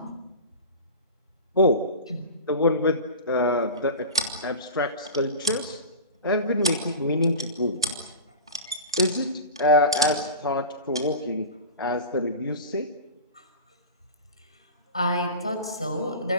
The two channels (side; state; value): both; inverted; correlation -0.30